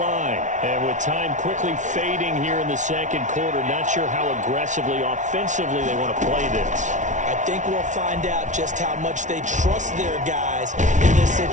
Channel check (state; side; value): late; left; 0.36 ms